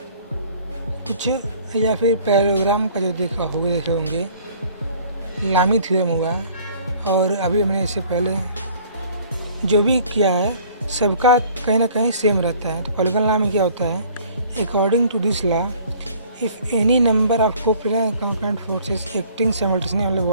कुछ, या फिर पैराग्राम का जो देखे होंगे लामी थ्योरम हुआ, और अभी हमने इससे पहले जो भी किया है सबका कहीं ना कहीं सेम रहता है। तो पॉलीगन लॉ में क्या होता है? According to this law if any number of coplanar forces acting simultaneously on the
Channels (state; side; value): inverted; both; correlation -0.53